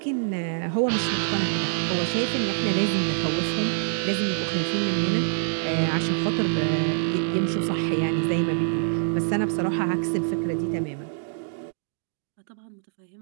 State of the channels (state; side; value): silent; left; digital silence